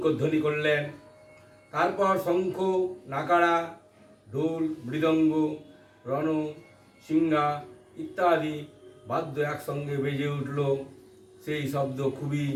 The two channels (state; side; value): identical; both; correlation 1.00